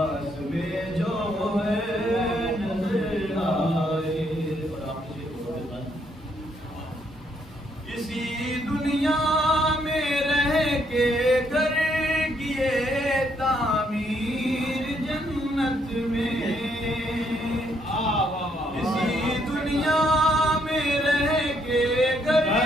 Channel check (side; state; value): both; normal; correlation 0.72